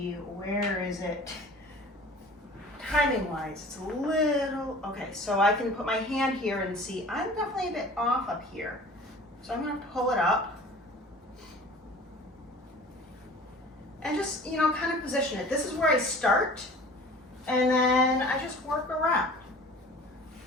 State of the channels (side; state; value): both; normal; correlation 0.44